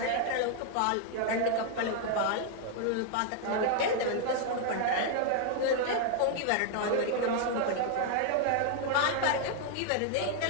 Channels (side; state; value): both; different; correlation 0.00